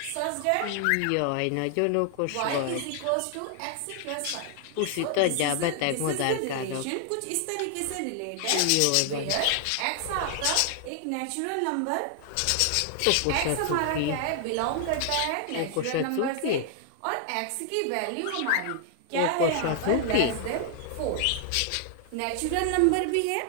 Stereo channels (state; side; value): different; both; correlation 0.00